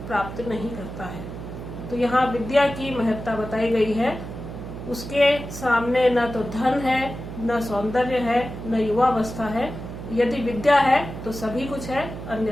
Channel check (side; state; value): right; noise; hum, 10 dB below the sound